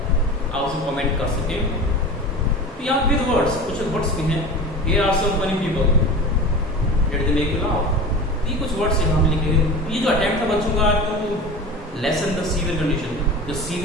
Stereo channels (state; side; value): normal; both; correlation 0.33